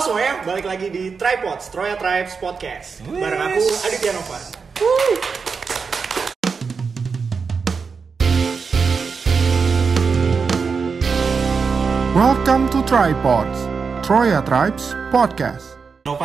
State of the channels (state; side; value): quieter; left; 5.3 dB